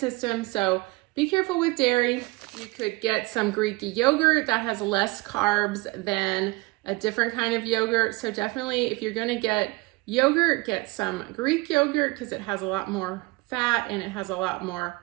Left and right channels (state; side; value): quieter; left; 24.3 dB